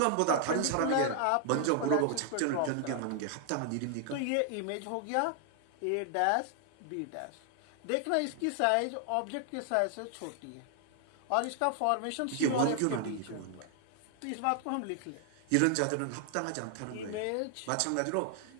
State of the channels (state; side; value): different; both; correlation 0.00